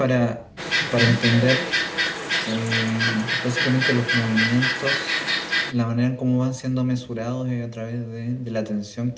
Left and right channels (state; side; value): identical; both; correlation 1.00